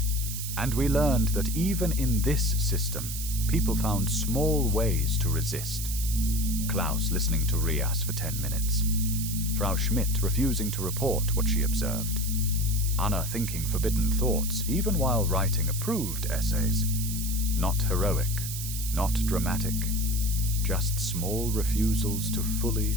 And we learned that even in this system, people found small ways to resist. Klaus listening to Rias for 10 minutes. Frau Schmidt refusing to report what she observed. Anna thinking forbidden thoughts even while writing approved essays. Not heroic, not dramatic, just small refusals to fully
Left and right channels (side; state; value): right; noise; hiss, 6 dB below the sound